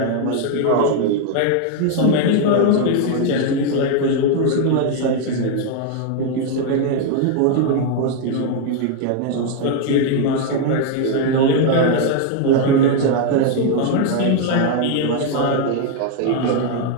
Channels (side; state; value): both; different; correlation 0.01